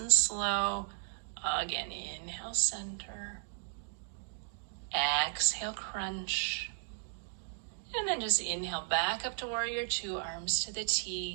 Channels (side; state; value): left; silent; digital silence